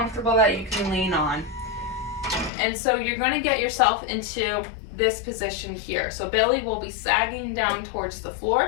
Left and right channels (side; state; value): right; drops out; at 2.5 s